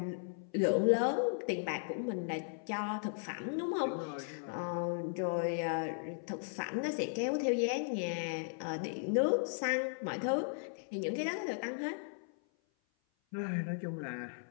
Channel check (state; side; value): silent; right; 53 dB below the other